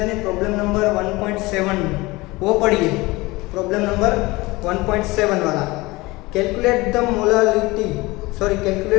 में problem number 1.7 वो पढ़िए, प्रॉब्लम नंबर 1.7 वाला। Calculate the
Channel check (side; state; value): right; quieter; 21.8 dB